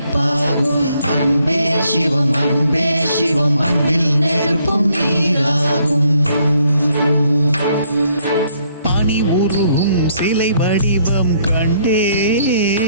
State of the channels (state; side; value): inverted; both; correlation -0.69